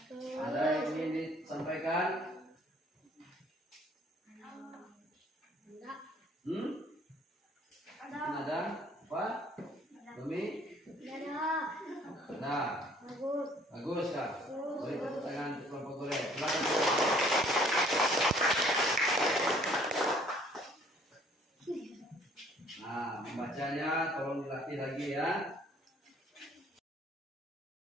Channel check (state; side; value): normal; both; correlation 0.58